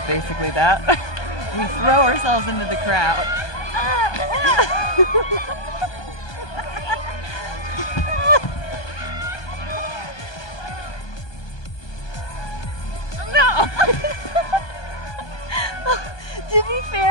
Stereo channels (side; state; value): right; late; 1.2 ms